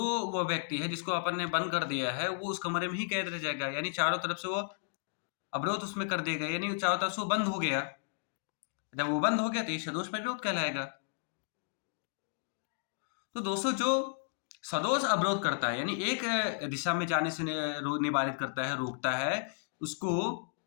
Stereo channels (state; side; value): silent; right; digital silence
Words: वो व्यक्ति है जिसको अपन ने बंद कर दिया है वो उस कमरे में ही कैद रह जाएगा। यानी चारों तरफ से वो अवरोध उसमें कर दिया गया, यानी चारों तरफ से वो बंद हो गया। जब वो बंद हो गया तो ये सदोष परिरोध कहलाएगा। तो दोस्तों, जो सदोष अवरोध करता है यानी एक दिशा में जाने से निवारित करता है, रोकता है, उसको